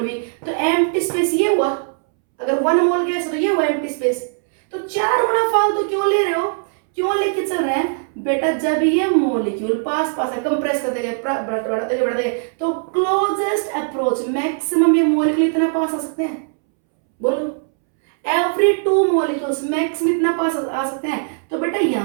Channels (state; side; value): silent; left; 66 dB below the other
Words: v, तो एम्प्टी स्पेस ये हुआ, अगर 1 मोल गैस तो ये हुआ एम्प्टी स्पेस। तो 4 गुना फालतू क्यों ले रहे हो, क्यों लेके चल रहे हैं बेटा, जब ये मॉलिक्यूल पास पास है, कंप्रेस करते गए, बढ़ाते गए, तो क्लोजेस्ट अप्रोच मैक्सिमम ये मॉलिक्यूल इतना पास आ सकते हैं, बोलो एवरी 2 मॉलिक्यूल्स मैक्सिमम इतना पास आ सकते हैं। तो बेटा